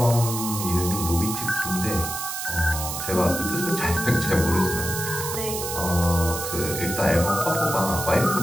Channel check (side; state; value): right; noise; hiss, 5 dB below the sound